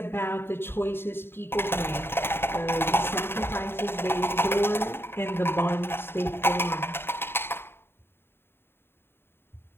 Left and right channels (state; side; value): late; right; 0.11 ms